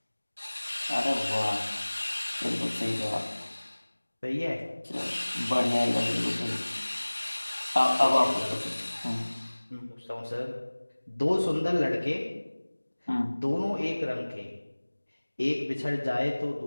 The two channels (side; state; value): both; inverted; correlation -1.00